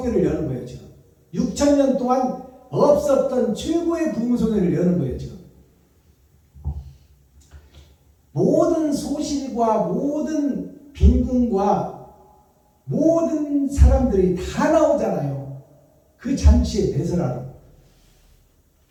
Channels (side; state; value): both; identical; correlation 1.00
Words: 여는 거예요 지금. 6,000년 동안 없었던 최고의 부흥성회를 여는 거예요 지금. 모든 소실과 모든 빈궁과 모든 사람들이 다 나오잖아요. 그 잔치에 배설하러.